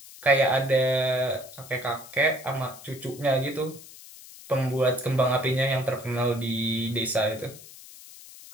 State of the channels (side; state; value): left; noise; hiss, 18 dB below the sound